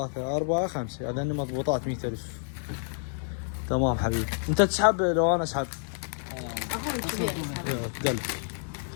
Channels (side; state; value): right; silent; 59 dB below the other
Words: 4 5 هذين مضبوطات 100000. تمام حبيبي. انت تسحب لو انا اسحب؟ اخوي الكبير. دل